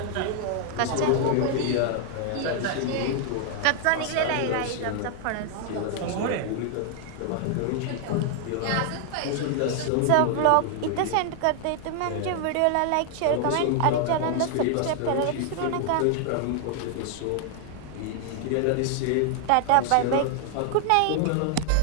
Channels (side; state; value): both; different; correlation 0.00